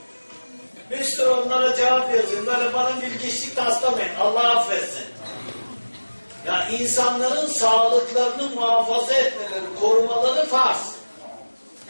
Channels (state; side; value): inverted; both; correlation -1.00